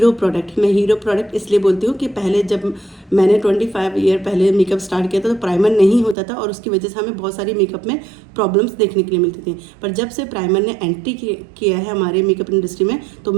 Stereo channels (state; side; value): drops out; left; at 6.2 s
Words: प्रोडक्ट। मैं हीरो प्रोडक्ट इसलिए बोलती हूँ कि पहले जब मैंने 25 ईयर पहले मेकअप स्टार्ट किया था तो प्राइमर नहीं होता था और उसकी वजह से हमें बहुत सारी मेकअप में प्रॉब्लम्स देखने के लिए मिलती थी। पर जब से प्राइमर ने एंट्री किया है हमारे मेकअप इंडस्ट्री में, तो